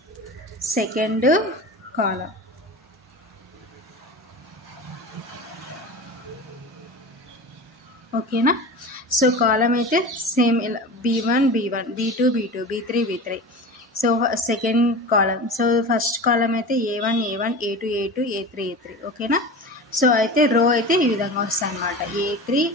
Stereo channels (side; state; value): both; normal; correlation 0.31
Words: second column. ఓకేనా? సో కాలం అయితే సేమ్ ఇలా B1 B2 B3. So second column. So first కాలం అయితే A1 A2 A3. ఓకేనా? సో అయితే రో అయితే ఈ విధంగా వస్తాయి అన్నమాట. A3